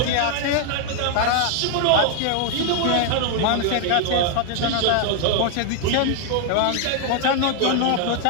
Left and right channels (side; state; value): both; different; correlation 0.00